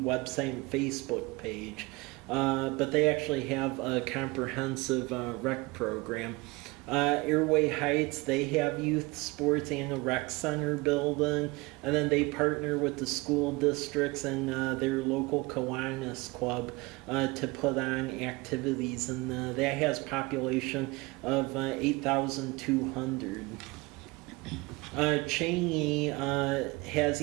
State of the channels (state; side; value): quieter; left; 24.3 dB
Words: and Facebook page. But they actually have a comprehensive rec program. Airway Heights, they have youth sports and a rec center building, and then they partner with the school districts and their local Kiwanis Club to put on activities, and that has population of 8,200. Cheney has